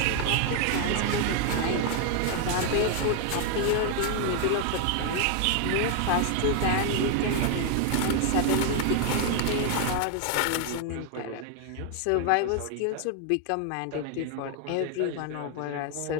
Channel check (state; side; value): different; both; correlation 0.00